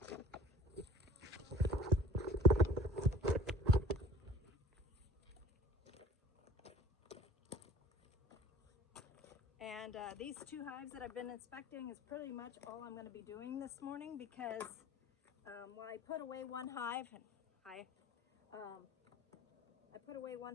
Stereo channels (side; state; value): both; normal; correlation 0.46